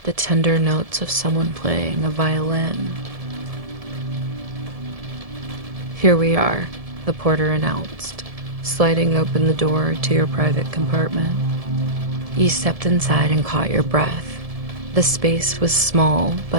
the tender notes of someone playing a violin. "Here we are," the porter announced, sliding open the door to your private compartment. You stepped inside and caught your breath. The space was small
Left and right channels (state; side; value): late; left; 1.7 ms